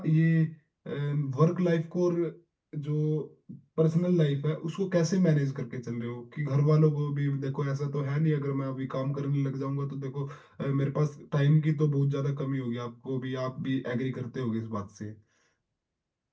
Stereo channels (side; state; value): both; identical; correlation 1.00